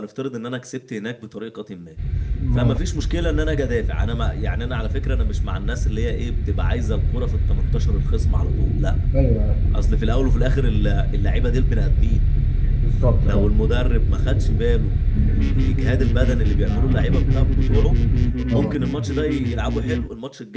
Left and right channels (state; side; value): identical; both; correlation 1.00